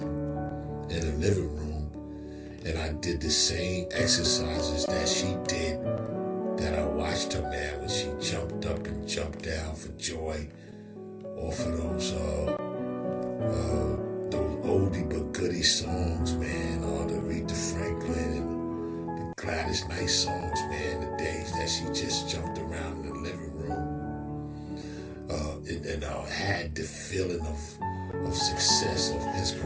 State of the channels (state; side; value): identical; both; correlation 1.00